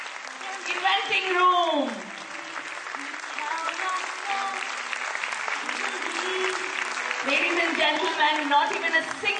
Inventing room. Ladies and gentlemen, not even a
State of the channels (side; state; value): both; identical; correlation 1.00